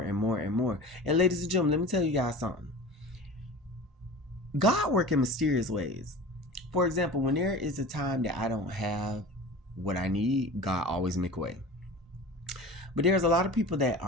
and more and more. And ladies and gentlemen, let me tell you guys something. God works in mysterious ways. For example, when there is a time that I don't have what I need, God always make a way. But there's a lot of people that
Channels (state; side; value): normal; both; correlation 0.36